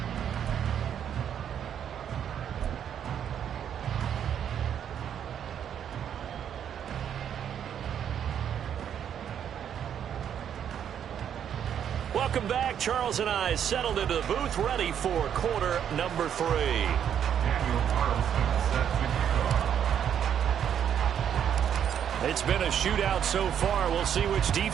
Welcome back. Charles and I settled into the booth, ready for quarter number 3. It's been a shootout so far. We'll see which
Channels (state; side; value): quieter; left; 9.0 dB